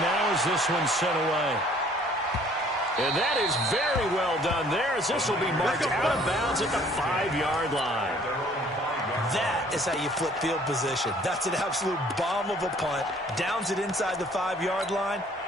now as this one's sent away. And that is very well done there as this will be marked out of bounds at the 5-yard line. That is how you flip field position. That's an absolute bomb of a punt. Downs it inside the 5-yard line.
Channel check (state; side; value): normal; both; correlation 0.57